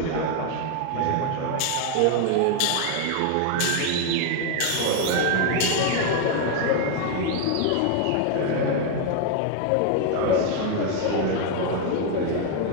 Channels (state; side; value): different; both; correlation 0.00